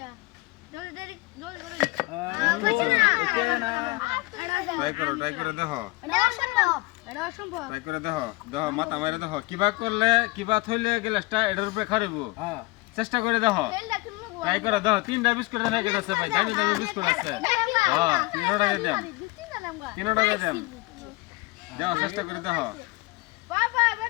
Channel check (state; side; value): quieter; right; 23.0 dB